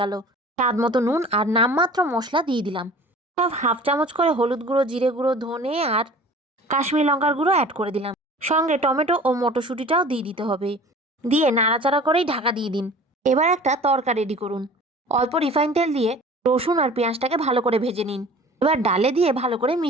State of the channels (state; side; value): normal; both; correlation 0.44